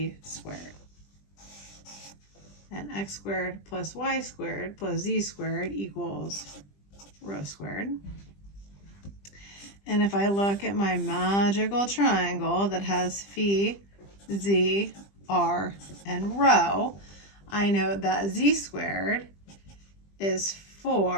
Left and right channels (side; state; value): right; late; 20 ms